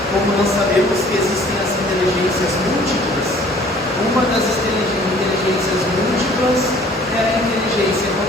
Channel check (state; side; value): normal; both; correlation 0.54